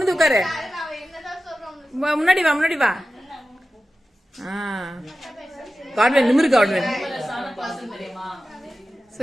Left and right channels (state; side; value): normal; both; correlation 0.94